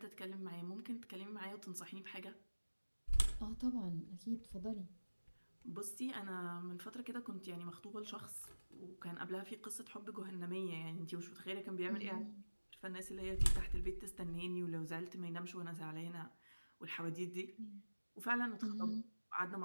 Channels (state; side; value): inverted; both; correlation -1.00